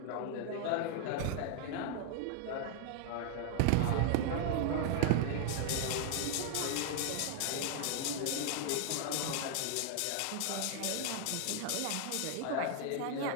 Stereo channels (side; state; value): both; different; correlation 0.00